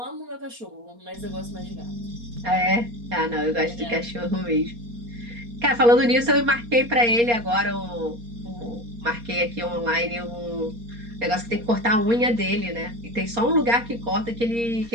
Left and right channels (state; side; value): late; left; 4.3 ms